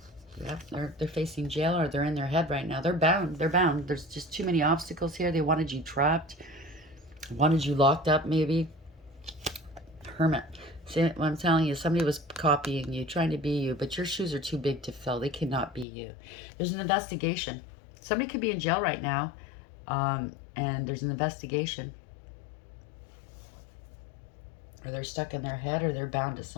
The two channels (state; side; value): drops out; right; at 15.9 s